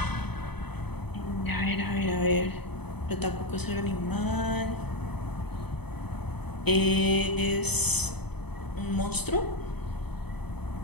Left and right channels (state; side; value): late; right; 0.98 ms